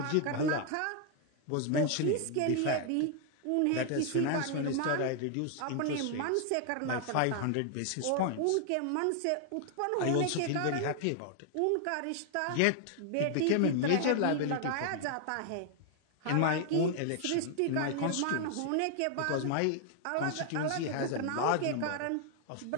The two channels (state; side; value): different; both; correlation 0.00